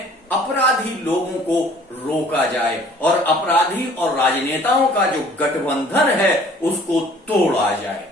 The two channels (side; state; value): both; normal; correlation 0.53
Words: अपराधी लोगों को रोका जाए और अपराधी और राजनेताओं का जो गठबंधन है उसको तोड़ा जाए।